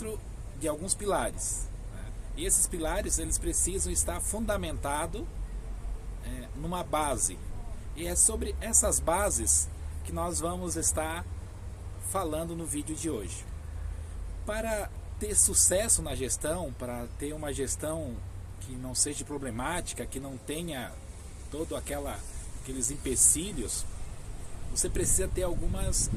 de alguns pilares, e esses pilares eles precisam estar fundamentados numa base, e é sobre essas bases que nós vamos estar falando no vídeo de hoje. Para ter sucesso na gestão, para ter uma gestão que não seja problemática, que não tenha todo aqueles empecilhos, você precisa ter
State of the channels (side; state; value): both; identical; correlation 1.00